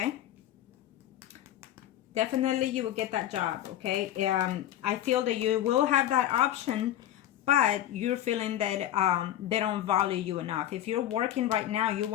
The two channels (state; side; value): quieter; right; 12.3 dB